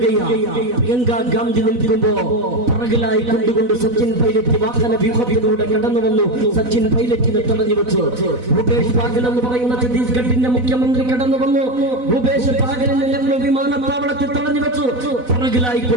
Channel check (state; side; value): late; left; 4.0 ms